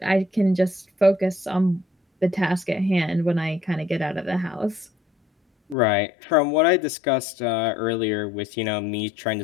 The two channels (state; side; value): drops out; right; at 5.8 s